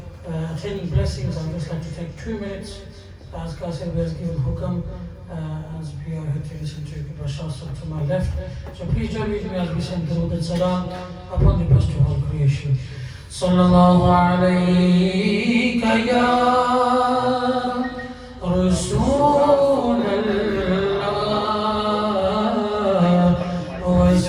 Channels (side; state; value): both; identical; correlation 1.00